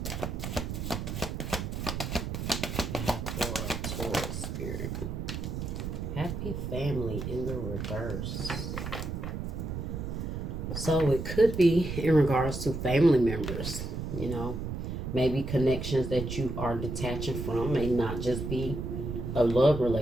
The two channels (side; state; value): right; noise; rumble, 4 dB below the sound